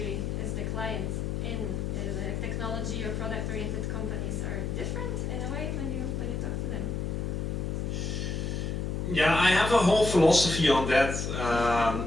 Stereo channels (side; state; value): left; noise; hum, 2 dB below the sound